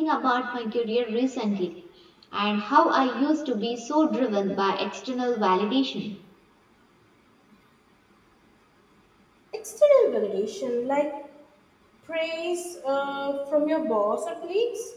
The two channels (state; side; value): identical; both; correlation 1.00